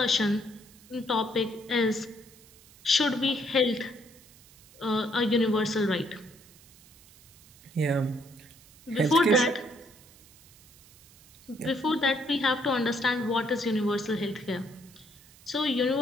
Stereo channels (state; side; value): noise; right; hiss, 25 dB below the sound